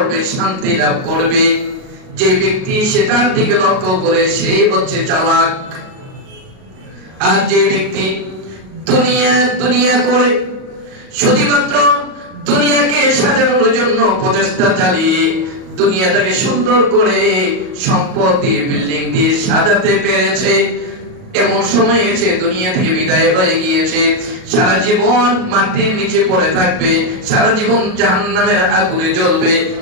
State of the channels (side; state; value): left; late; 38 ms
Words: শান্তি লাভ করবে, যে ব্যক্তি সেটার দিকে লক্ষ্য করে সেই হচ্ছে চালাক। আর যে ব্যক্তি দুনিয়া করে শুধুমাত্র দুনিয়াকে সাজানোর জন্য প্রচেষ্টা চালিয়ে দুনিয়াটাকে সুন্দর করে সম্পদ দিয়ে বিল্ডিং দিয়ে সাজাতে পেরেছে, এমন সময় এসে দুনিয়া থেকে বিদায় হয়ে গিয়েছে, সারা জীবন মাটির নিচে পড়ে থাকবে, সারা জীবন জাহান্নামের আগুনে জ্বলবে,